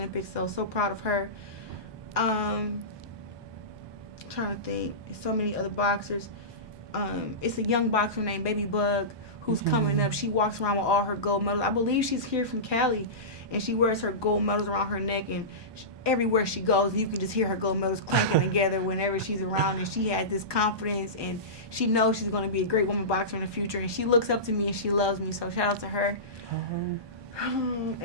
so proud of her. Trying to think, so many other boxers. It's a young boxer named Baby Bug who's coming up. She walks around with all her gold medals. I believe she's here from Cali, and she wears her gold medals around her neck, and everywhere she goes, you can just hear her gold medals clanking together whenever she's around, and she has this confidence, and she knows she's going to be a great woman boxer in the future, and she looks up to me, and she loves me, so shout out to her.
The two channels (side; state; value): left; late; 1.2 ms